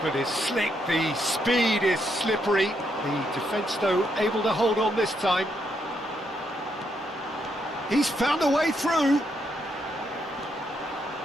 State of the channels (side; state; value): both; normal; correlation 0.77